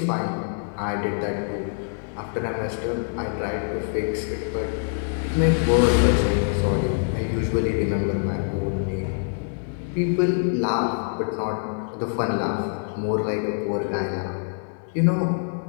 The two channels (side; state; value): right; silent; digital silence